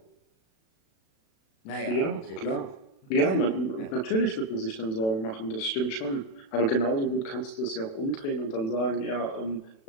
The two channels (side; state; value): right; late; 36 ms